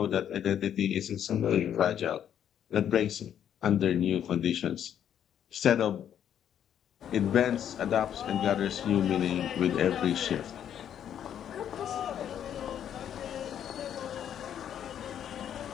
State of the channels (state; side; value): quieter; right; 9.6 dB